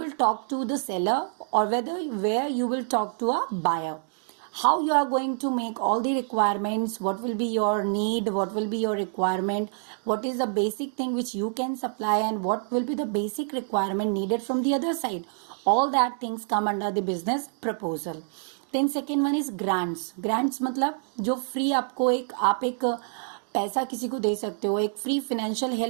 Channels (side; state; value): left; silent; 60 dB below the other